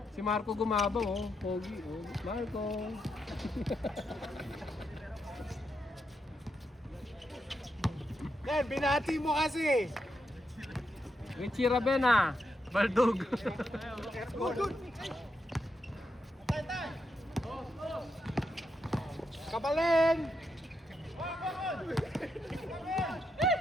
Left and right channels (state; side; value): normal; both; correlation 0.83